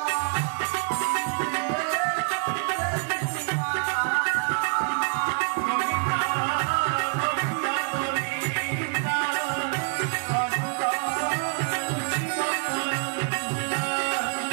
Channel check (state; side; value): quieter; left; 36.9 dB